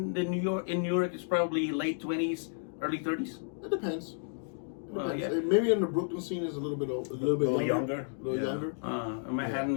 New York is probably late 20s, early 30s. It depends. Yeah. Maybe in the Brooklyn scene is a little bit younger. A little younger. Manhattan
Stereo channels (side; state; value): right; silent; digital silence